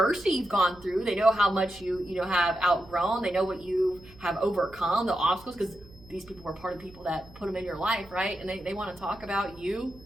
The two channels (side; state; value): right; noise; hum, 23 dB below the sound